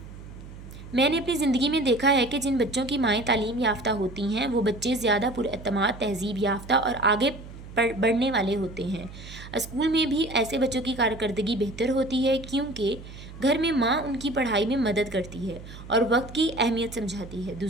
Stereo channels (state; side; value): noise; right; hum, 15 dB below the sound